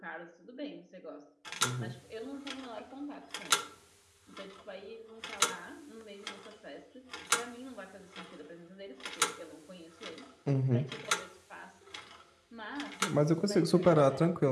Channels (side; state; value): both; identical; correlation 1.00